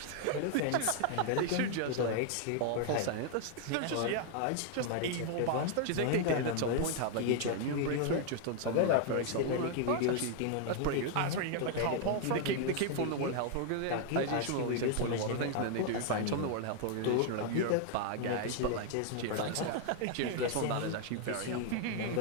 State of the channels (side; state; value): both; different; correlation 0.00